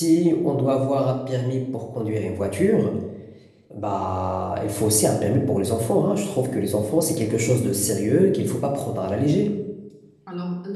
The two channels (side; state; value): both; identical; correlation 1.00